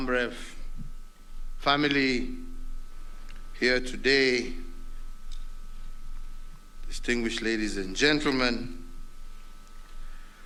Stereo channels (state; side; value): identical; both; correlation 1.00